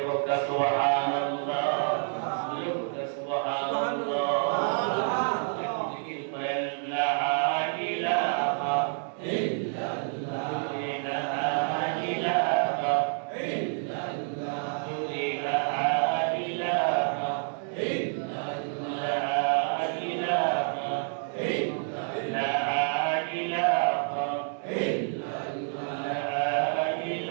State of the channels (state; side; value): silent; left; 59 dB below the other